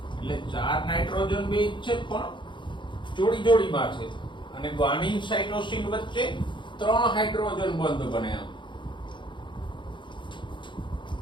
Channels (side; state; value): right; late; 0.23 ms